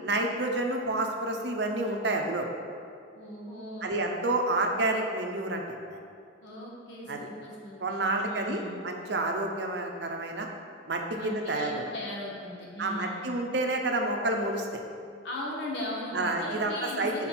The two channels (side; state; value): both; normal; correlation 0.03